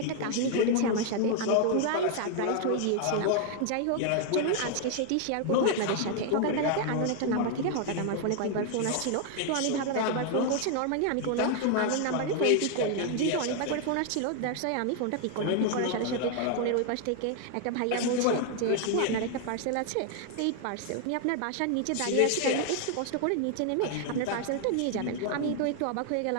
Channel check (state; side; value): different; both; correlation 0.00